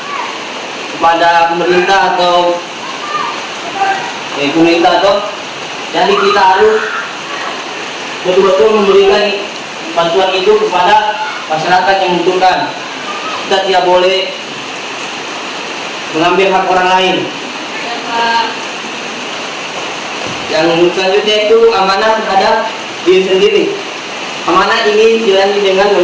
kepada pemerintah atau jadi kita harus betul-betul memberikan bantuan itu kepada masyarakat yang membutuhkan. Kita tidak boleh mengambil hak orang lain. Yang selanjutnya itu amanah terhadap diri sendiri. Amanah ini dijalani dengan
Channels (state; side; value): identical; both; correlation 1.00